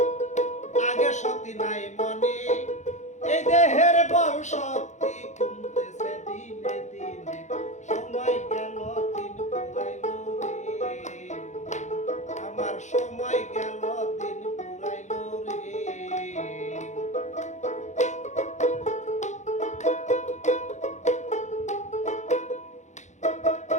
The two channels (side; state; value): right; late; 0.34 ms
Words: আগের শক্তি নাই মনে, এই দেহের বল শক্তি কমতেছে দিনে দিনে, সময় গেল দিন ফুরাইল রে, আমার সময় গেল দিন ফুরাইল রে।